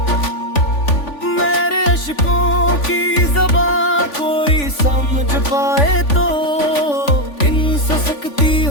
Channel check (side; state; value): right; late; 3.5 ms